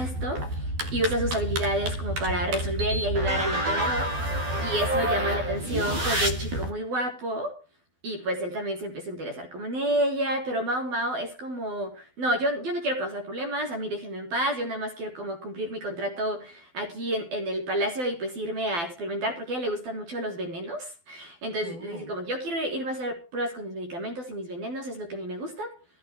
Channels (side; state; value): left; late; 12 ms